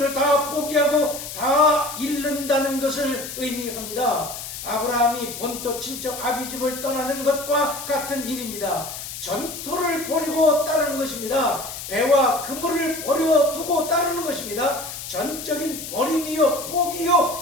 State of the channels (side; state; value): left; noise; hiss, 9 dB below the sound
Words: 다 포기하고 다 잃는다는 것을 의미합니다. 아브라함이 본토 친척 아비집을 떠나는 것과 같은 일입니다. 전토를 버리고 따르는 것입니다. 배와 그물을 버려두고 따르는 것입니다. 전적인 버림이요